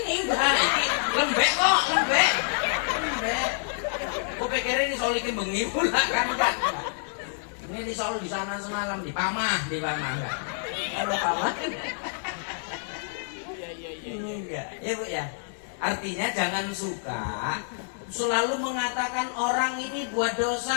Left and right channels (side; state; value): right; silent; 60 dB below the other